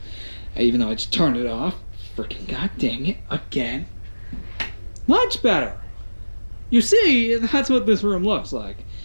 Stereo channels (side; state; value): both; inverted; correlation -1.00